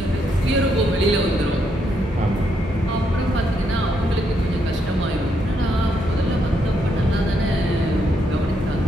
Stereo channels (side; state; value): both; normal; correlation 0.77